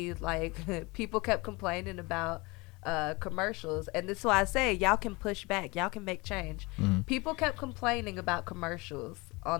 like people kept complaining about commercials, and this is why I say y'all can push back, y'all can make change. People kept complaining about commercials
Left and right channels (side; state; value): right; quieter; 24.9 dB